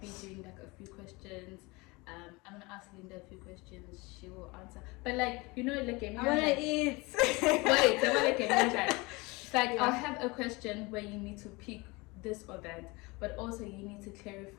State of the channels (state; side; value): quieter; right; 24.9 dB